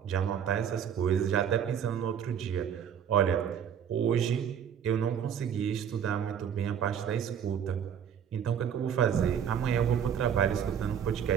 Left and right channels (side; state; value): left; quieter; 8.4 dB